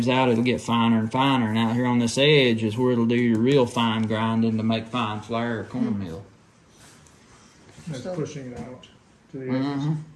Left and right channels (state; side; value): identical; both; correlation 1.00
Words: out, it'll get finer and finer. And out here on this edge is where it'll do your real fine grinding to make fine flour or cornmeal. That's So- pushing it out to the edges.